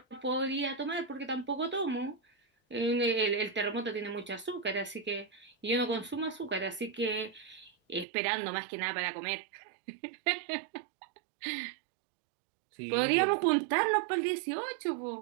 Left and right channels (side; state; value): left; drops out; at 8.1 s